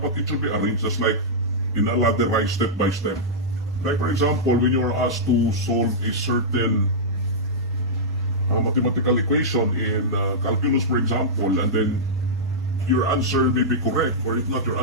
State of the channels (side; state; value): both; normal; correlation -0.11